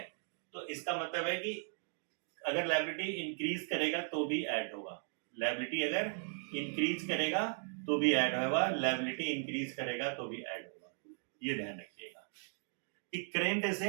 तो इसका मतलब है कि अगर लायबिलिटी इंक्रीज करेगा तो भी ऐड होगा, लायबिलिटी अगर इंक्रीज करेगा तो भी ऐड होगा, लायबिलिटी इंक्रीज करेगा तो भी ऐड होगा। ये ध्यान रखिएगा कि करंट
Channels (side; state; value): left; silent; 53 dB below the other